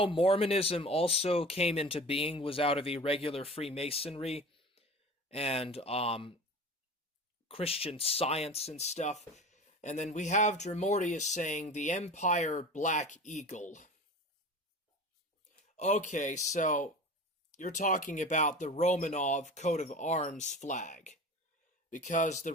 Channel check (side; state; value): both; normal; correlation 0.36